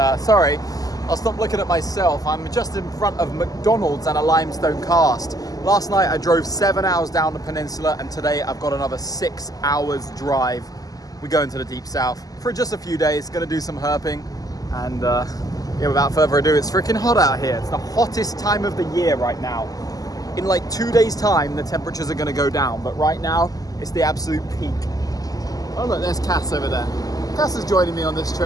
sorry. I'll stop looking at myself. I'm just in front of McDonald's and a limestone cast. Last night I drove 7 hours down the peninsula and today I've got another 6 hours drive. We're going to the deep south for just a few days, gonna do some herping. And yeah, without further ado, it's freaking hot out here. It's the hottest time of the year right now. In like 2 days time, the temperatures are gonna go down, but right now it's the absolute peak. Oh look, there's Cass over there. Cass is joining me on this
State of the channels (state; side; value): late; right; 0.17 ms